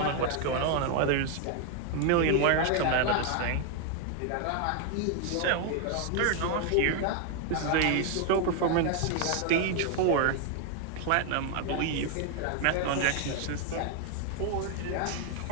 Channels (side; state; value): both; different; correlation 0.01